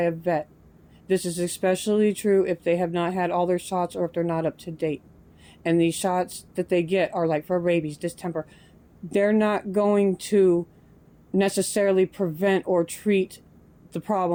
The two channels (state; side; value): identical; both; correlation 1.00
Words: vet. This is especially true if they have not had all their shots or if they're not up to date. And these shots that they get are like for rabies, distemper. They're not going to necessarily prevent or treat the